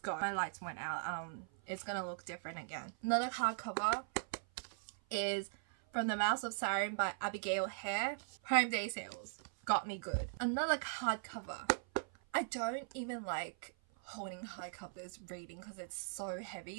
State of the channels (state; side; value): silent; left; 51 dB below the other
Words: My lights went out. It's gonna look different again. Another hardcover is From the Mouth of Siren by Abigail Hare. Prime Day sales. Got me good. Another hardcover. I don't even like holding hardcovers reading because it's so